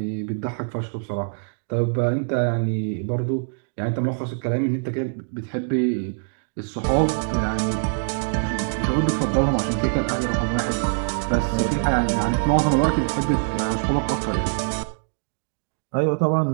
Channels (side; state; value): left; silent; digital silence